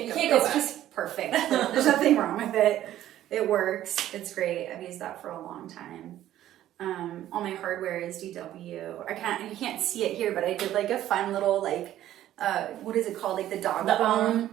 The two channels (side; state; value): left; quieter; 12.8 dB